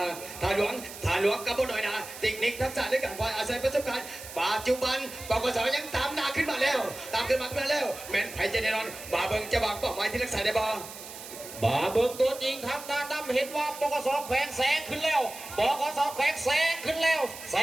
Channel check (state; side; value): noise; right; hiss, 13 dB below the sound